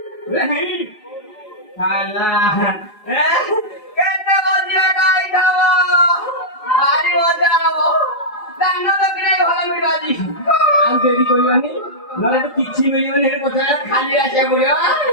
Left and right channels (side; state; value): right; late; 4.8 ms